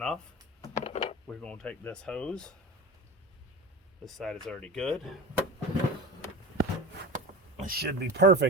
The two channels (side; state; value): both; normal; correlation 0.30